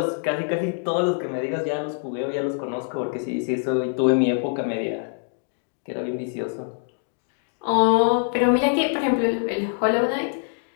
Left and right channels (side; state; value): right; silent; 62 dB below the other